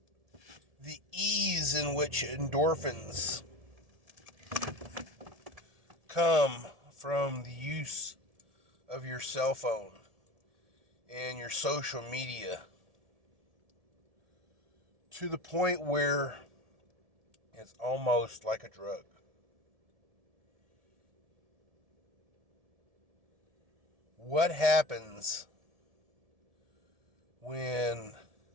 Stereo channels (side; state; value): left; late; 1.7 ms